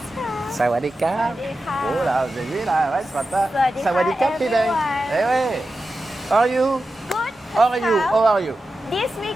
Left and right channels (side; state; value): both; normal; correlation 0.92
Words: Sawadika. Sawadika. Oh là, vous avez vu là, ouais, ce matin. Sawadika, Sawadika, Pideng. everyone. Eh ouais. How are you? Good, How are you? Pascal. How are you? This